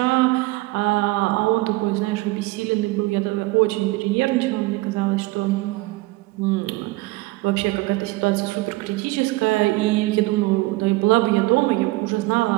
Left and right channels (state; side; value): quieter; left; 21.1 dB